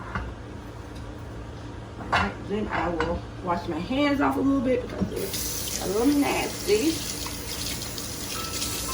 Then I will wash my hands off a little bit because it's a little nasty.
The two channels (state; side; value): identical; both; correlation 1.00